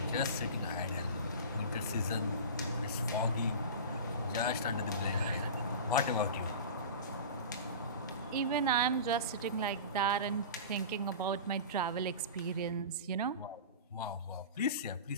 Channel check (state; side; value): inverted; both; correlation -0.32